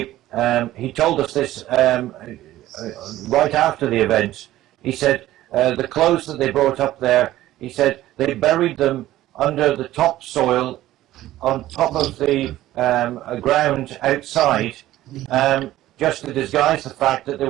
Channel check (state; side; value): quieter; left; 14.8 dB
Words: he told us this right after the event. He said, the clothes that they brought up there, he said, they buried them under the topsoil on top of the ground outside, just to disguise the fact that they